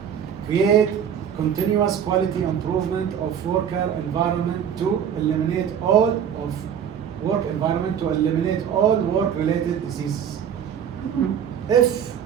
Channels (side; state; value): left; quieter; 8.4 dB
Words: create continuous quality improvement of worker environment to eliminate all work-related diseases. If